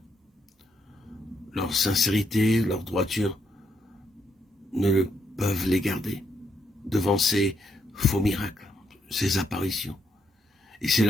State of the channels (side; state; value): both; normal; correlation 0.76